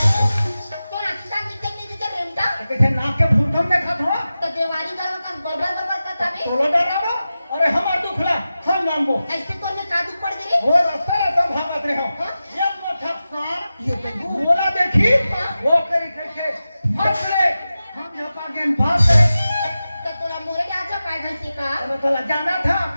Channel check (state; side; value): inverted; both; correlation -0.94